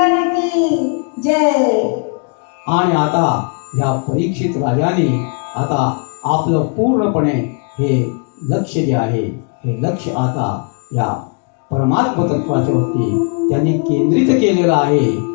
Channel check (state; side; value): quieter; right; 38.7 dB